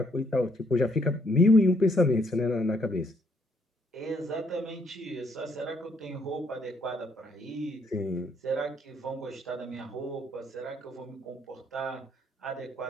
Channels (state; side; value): normal; both; correlation 0.69